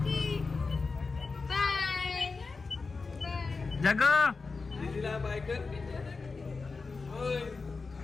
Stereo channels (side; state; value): right; quieter; 4.3 dB